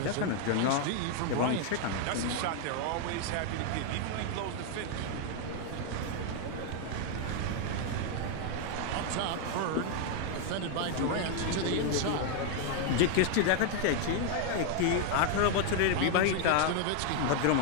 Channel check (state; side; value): different; both; correlation 0.00